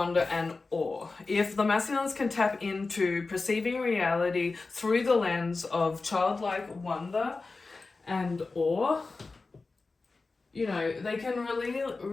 and awe. If the masculines can tap into perceiving reality through the lens of childlike wonder and awe, they can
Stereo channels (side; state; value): right; quieter; 3.8 dB